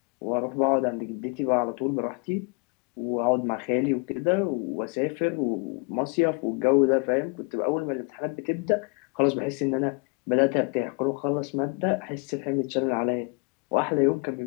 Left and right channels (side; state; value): right; quieter; 32.5 dB